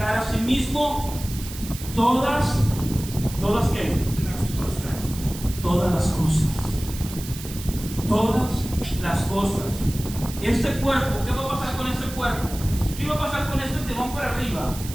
a sí mismo todas ¿qué? Todas las cosas. Todas las cosas. Este cuerpo, ¿qué va a pasar con este cuerpo? ¿Qué va a pasar con estos que van para arriba?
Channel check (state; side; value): noise; right; hiss, 12 dB below the sound